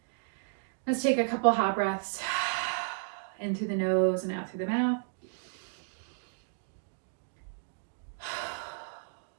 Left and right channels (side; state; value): left; silent; digital silence